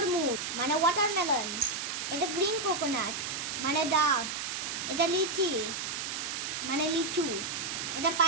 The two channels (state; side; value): noise; right; hiss, 3 dB below the sound